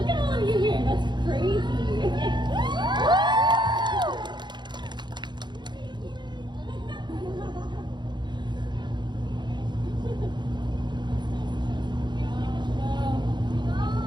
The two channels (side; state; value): left; late; 0.22 ms